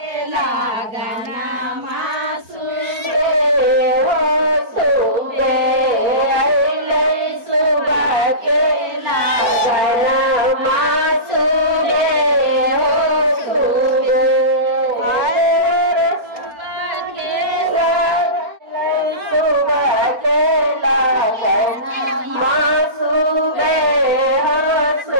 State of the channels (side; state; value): left; late; 4.4 ms